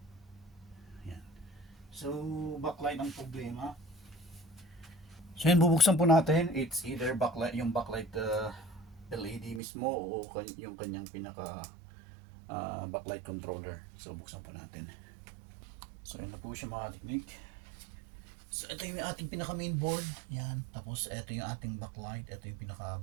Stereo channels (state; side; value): drops out; left; at 9.6 s